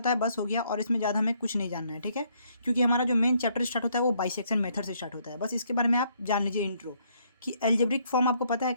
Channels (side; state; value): both; inverted; correlation -0.69